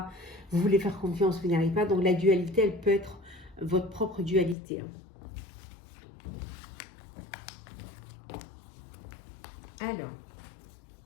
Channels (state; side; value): drops out; right; at 4.5 s